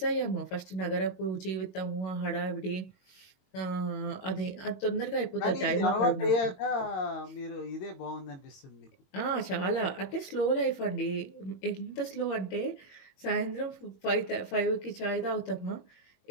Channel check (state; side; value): late; right; 21 ms